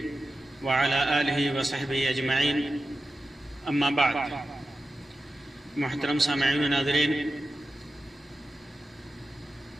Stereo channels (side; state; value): both; normal; correlation 0.92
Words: وعلى آله وصحبه أجمعين اما بعد. محترم سامعین و ناظرین،